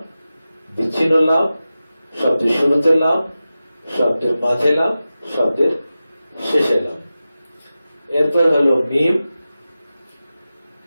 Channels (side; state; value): both; inverted; correlation -0.94